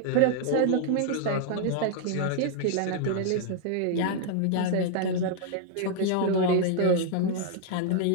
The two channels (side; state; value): both; different; correlation 0.00